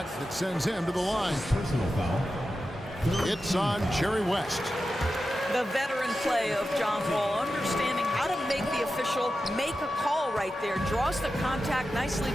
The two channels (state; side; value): normal; both; correlation 0.92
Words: that sends him to the line. Personal foul. It's on Jerry West. The veteran play of John Wall, understanding how to make the official make a call right there. Draws the contact, nicely